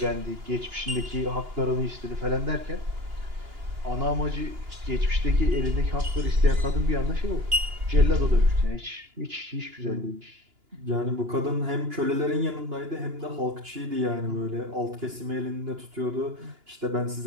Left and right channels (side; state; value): left; late; 2.9 ms